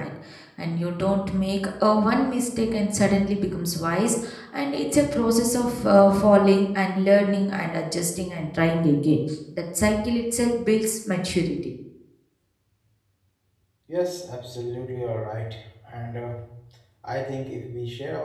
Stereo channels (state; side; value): identical; both; correlation 1.00